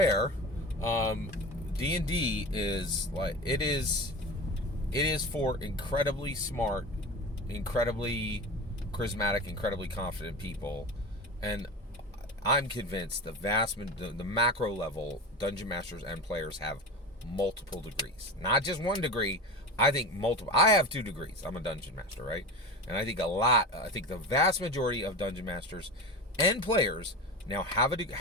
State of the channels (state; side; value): normal; both; correlation 0.28